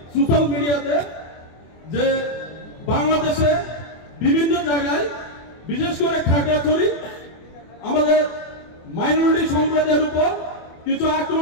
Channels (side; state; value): right; late; 24 ms